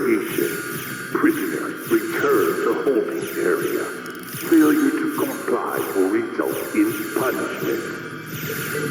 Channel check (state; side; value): identical; both; correlation 1.00